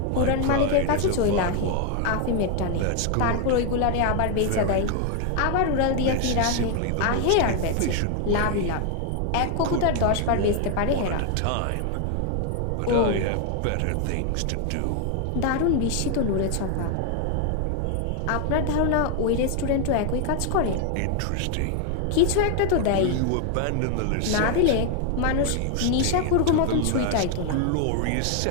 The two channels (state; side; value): different; both; correlation 0.00